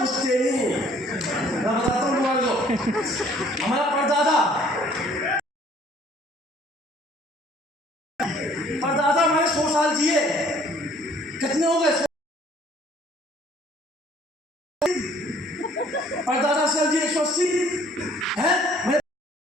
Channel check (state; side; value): normal; both; correlation 0.58